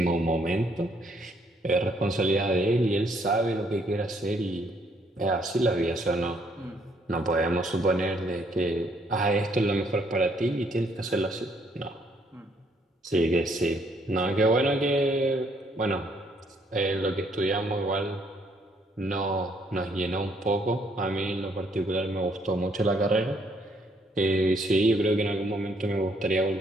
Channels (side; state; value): both; normal; correlation 0.68